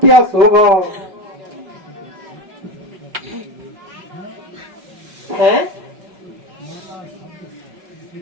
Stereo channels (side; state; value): left; late; 5.3 ms